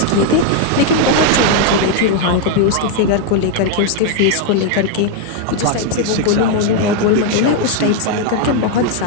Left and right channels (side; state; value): both; different; correlation 0.00